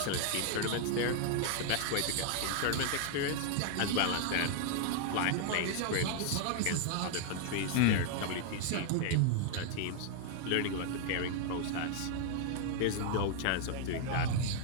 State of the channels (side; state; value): both; different; correlation 0.00